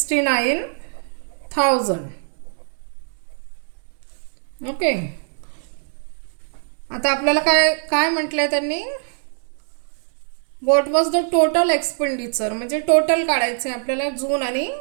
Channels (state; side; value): silent; left; digital silence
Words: ओके. आता आपल्याला काय काय म्हटलंय त्यांनी, what was the total expenditure, म्हणजे टोटल काढायचं आहे आपल्याला जून आणि